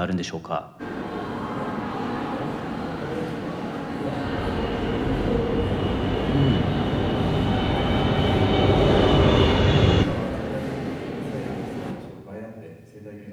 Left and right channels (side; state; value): both; identical; correlation 1.00